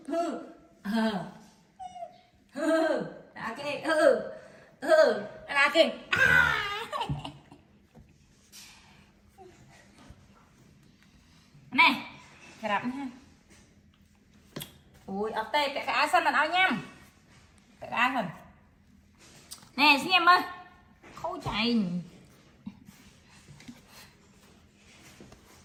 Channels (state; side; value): identical; both; correlation 1.00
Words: là kì này cái đập nha ui ở tê cái cá xanh mình ao nhâm cái cá mình nè xin em ơi khâu chạy